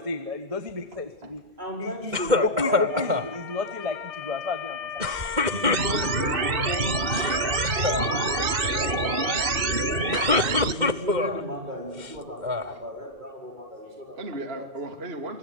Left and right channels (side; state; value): left; late; 2.1 ms